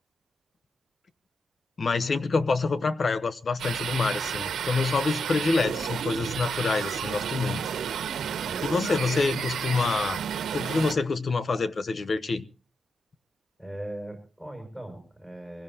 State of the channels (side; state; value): both; normal; correlation 0.84